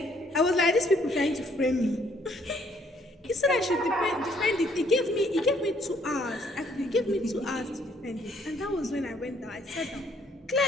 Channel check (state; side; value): normal; both; correlation 0.65